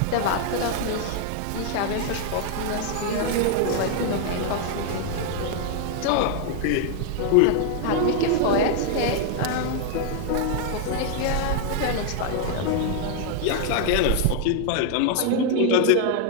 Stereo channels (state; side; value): different; both; correlation 0.00